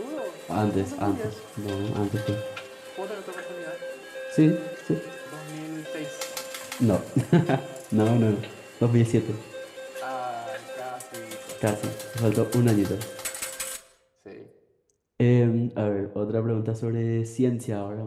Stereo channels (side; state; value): both; identical; correlation 1.00